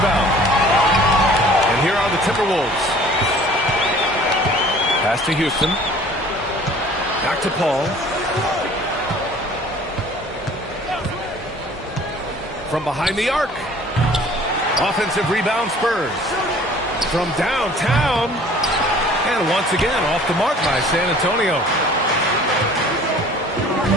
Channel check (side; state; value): both; normal; correlation 0.50